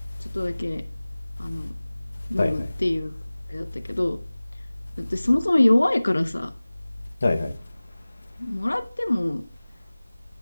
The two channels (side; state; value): both; inverted; correlation -0.99